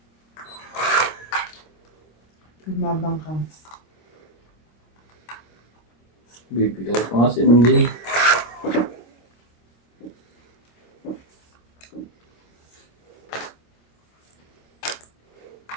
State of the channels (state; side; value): late; right; 25 ms